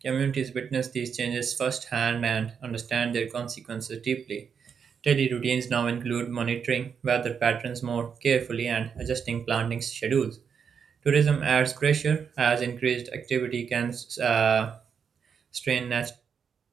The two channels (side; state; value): left; quieter; 6.8 dB